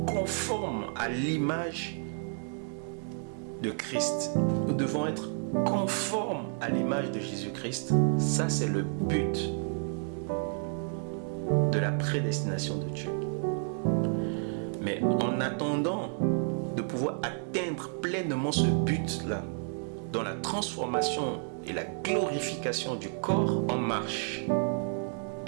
à l'image de Christ. Nous devons être conformes à l'image de Jésus-Christ. Ça, c'est le but de la prédestination de Dieu. Mais en attendant de pouvoir atteindre pleinement ce but-là, dans la transformation et la glorification du corps, on marche.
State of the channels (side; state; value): left; silent; 57 dB below the other